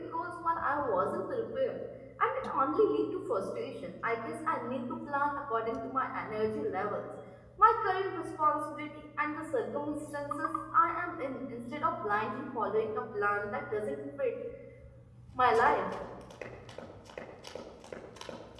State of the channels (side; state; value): both; identical; correlation 1.00